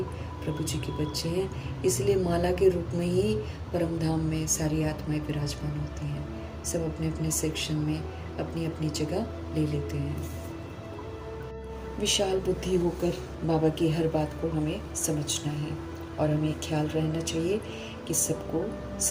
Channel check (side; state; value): both; identical; correlation 1.00